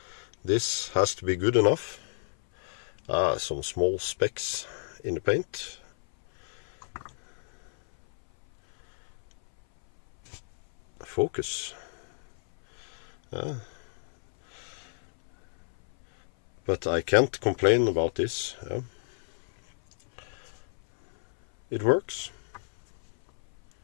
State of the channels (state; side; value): silent; right; 58 dB below the other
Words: this has to be good enough. Some small specks in the paint. focus. But I can't complain about this. It works.